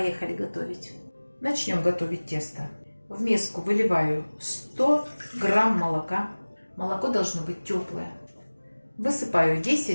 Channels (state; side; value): inverted; both; correlation -1.00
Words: готовить! Начнем готовить тесто. В миску выливаю 100 грамм молока. Молоко должно быть теплое. Высыпаю